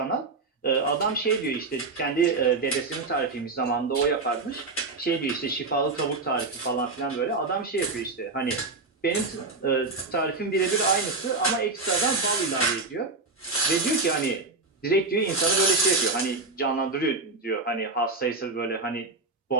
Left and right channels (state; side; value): quieter; left; 3.7 dB